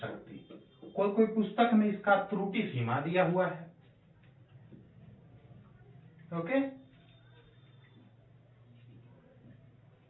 कोई पुस्तक में इसका त्रुटि सीमा दिया हुआ है, ओके।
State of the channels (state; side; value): identical; both; correlation 1.00